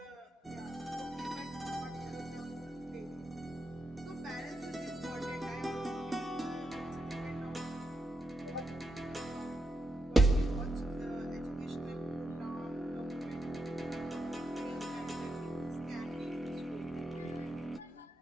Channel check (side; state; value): both; normal; correlation 0.85